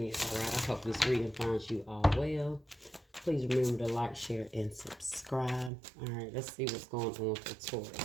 all right? I hope this reading finds you all well. Please remember to like, share, and subscribe. All right, let's see what's going on for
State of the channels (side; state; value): left; drops out; at 5.7 s